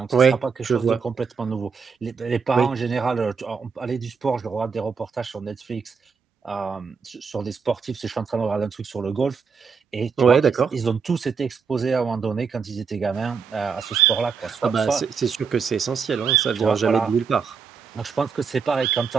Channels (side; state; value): left; quieter; 5.8 dB